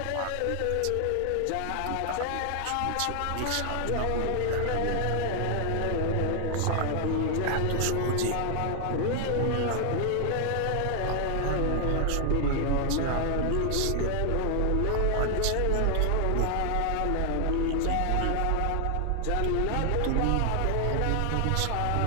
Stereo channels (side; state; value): both; different; correlation 0.00